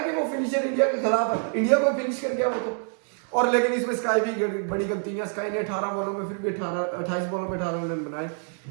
कि वो फिनिशर इंडिया के खिलाफ है, इंडिया को फिनिश कर गया वो तो। और लेकिन इसमें स्काई भी बड़ी गलती है, स्काई ने 18 बॉलों में फिर भी 28 बॉलों में 18 रन बनाए।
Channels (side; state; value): left; silent; 56 dB below the other